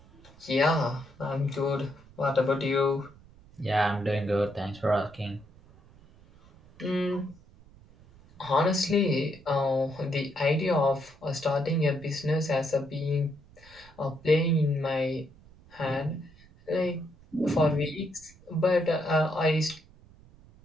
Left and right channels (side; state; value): right; noise; rumble, 25 dB below the sound